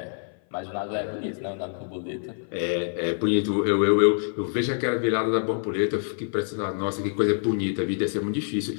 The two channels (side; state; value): right; silent; 56 dB below the other